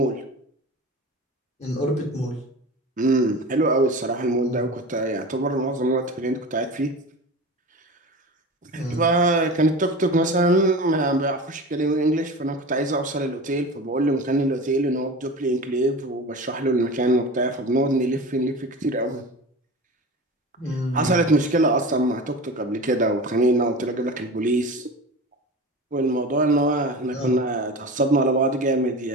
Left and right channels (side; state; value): both; normal; correlation 0.31